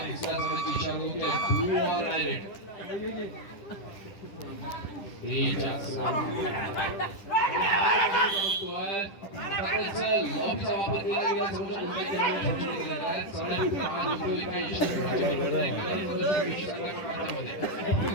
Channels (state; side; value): late; right; 10 ms